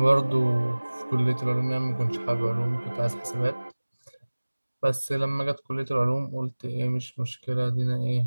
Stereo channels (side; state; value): both; inverted; correlation -1.00